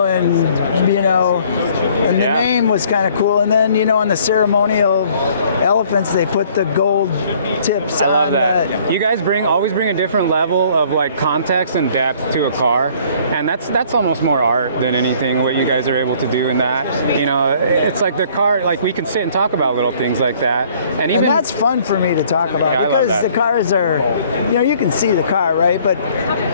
and, you know, and the name was kind of cool. And then, you know, on the ceremonial elephants, they put the gold tips on. I love that. You guys always bring a different level of like context and depth to a car, and that's almost more art than anything what you guys are able to do in that. You know, it's like the car, like we can sit and talk about little things like that, and that's fun for me to talk about because the cars are, you know, you can see the car, right? But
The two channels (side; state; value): both; inverted; correlation -0.58